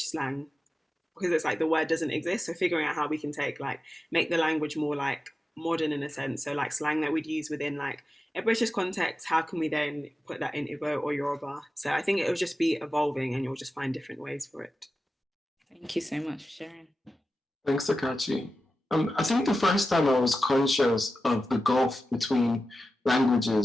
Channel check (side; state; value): both; normal; correlation 0.93